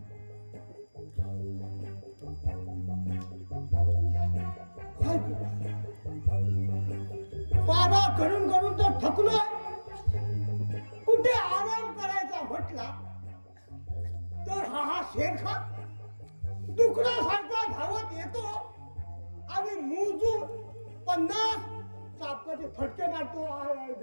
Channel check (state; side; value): inverted; both; correlation -1.00